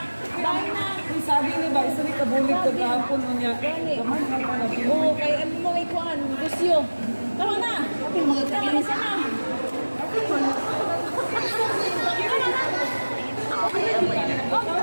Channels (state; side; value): inverted; both; correlation -1.00